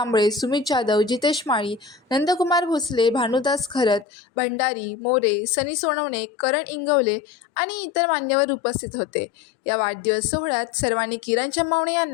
सुमित जाधव, जितेश माळी, नंदकुमार भोसले, भानुदास खरत, भंडारी, मोरे, सनी सोनवणे, करण इंगवले आणि इतर मान्यवर उपस्थित होते. या वाढदिवस सोहळ्यात सर्वांनी किरण चंबावणे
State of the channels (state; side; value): drops out; right; at 4.0 s